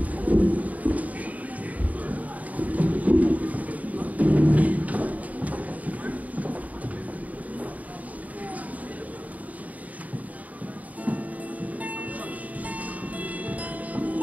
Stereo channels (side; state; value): left; late; 0.072 ms